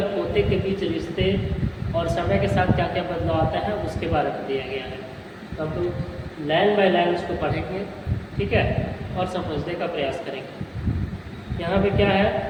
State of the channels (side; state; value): both; identical; correlation 1.00